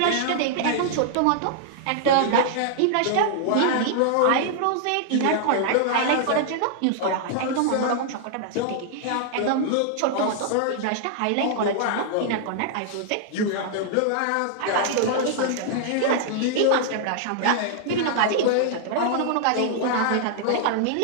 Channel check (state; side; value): different; both; correlation -0.01